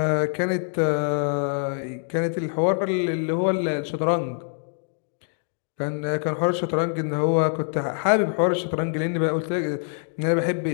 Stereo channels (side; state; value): right; silent; digital silence